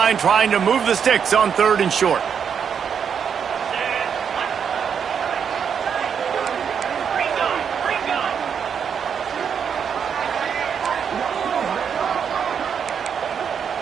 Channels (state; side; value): quieter; left; 7.3 dB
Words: trying to move the sticks on 3rd and short.